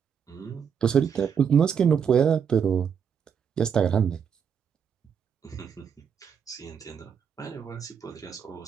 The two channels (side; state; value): left; quieter; 7.3 dB